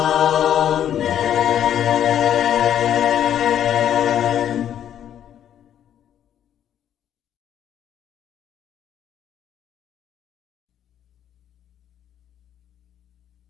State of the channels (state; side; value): quieter; right; 10.2 dB